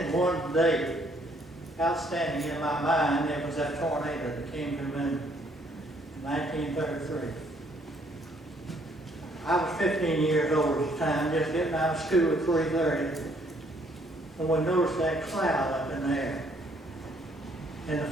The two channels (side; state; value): both; normal; correlation 0.66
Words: one day. Outstanding in my mind, it was that tornado that came to Minden in 1933. I was 15 years old at the time, just getting out of school at 3:30, and we noticed that cloud up in the air. And the